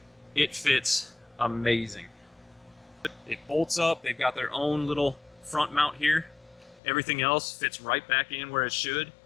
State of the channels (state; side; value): drops out; right; at 6.8 s